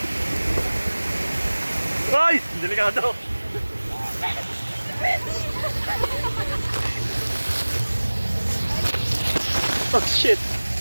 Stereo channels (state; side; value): inverted; both; correlation -1.00